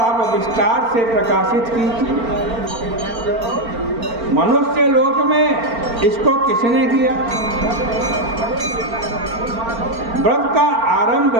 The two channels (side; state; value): left; late; 4.4 ms